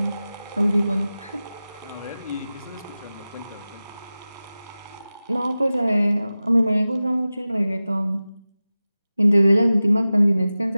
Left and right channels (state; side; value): inverted; both; correlation -0.96